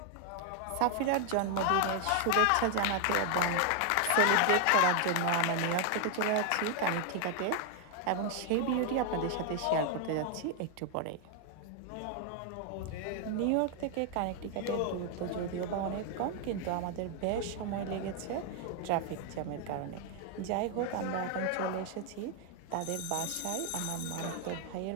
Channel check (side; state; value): both; different; correlation 0.00